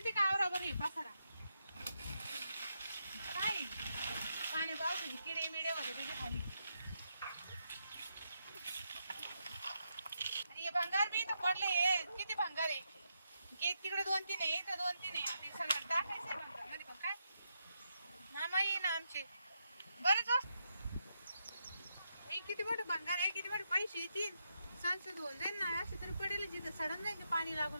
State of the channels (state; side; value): inverted; both; correlation -0.83